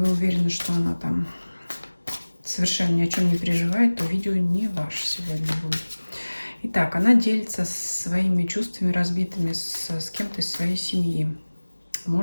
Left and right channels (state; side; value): inverted; both; correlation -1.00